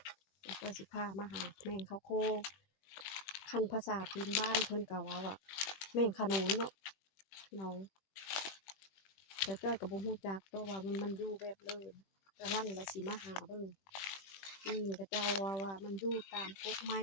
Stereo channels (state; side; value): late; right; 21 ms